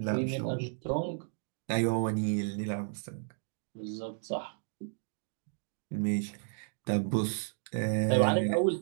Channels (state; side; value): silent; left; 56 dB below the other